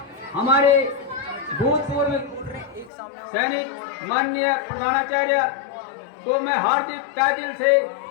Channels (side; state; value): right; drops out; at 2.9 s